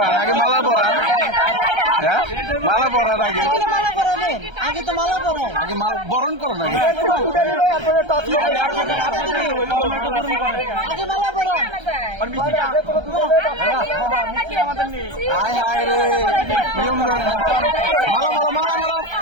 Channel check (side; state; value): left; late; 1.3 ms